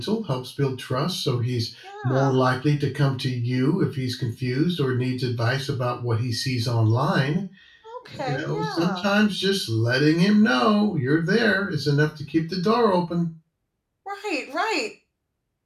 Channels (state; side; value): identical; both; correlation 1.00